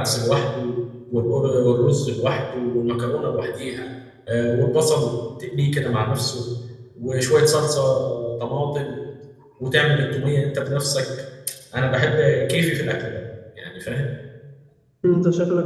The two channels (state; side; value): identical; both; correlation 1.00